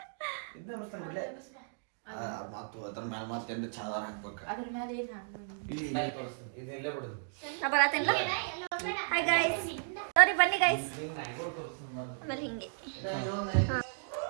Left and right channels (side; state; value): left; silent; digital silence